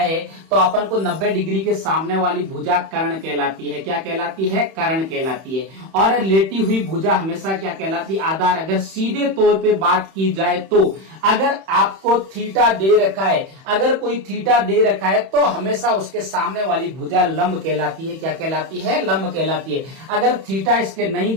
तो अपन को 90 डिग्री के सामने वाली भुजा कर्ण कहलाती है। क्या कहलाती है? कर्ण कहलाती है। और लेटी हुई भुजा हमेशा क्या कहलाती है? आधार। अगर सीधे तौर पे बात की जाए तो अगर आपको थीटा दे रखा है, अगर कोई थीटा दे रखा है तो हमेशा उसके सामने वाली भुजा लंब कहलाती है। क्या कहलाती है? लंब कहलाती है। अगर थीटा इसके नहीं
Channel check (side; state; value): left; late; 31 ms